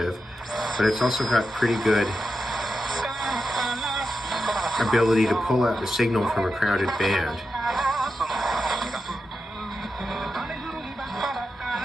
but it's also got pretty good ability to pull out the signal from a crowded band.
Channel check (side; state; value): both; normal; correlation 0.89